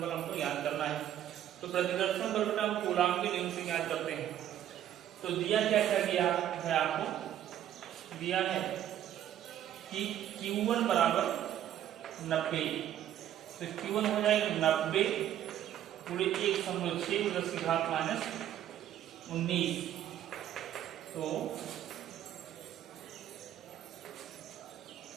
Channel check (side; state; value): left; quieter; 11.3 dB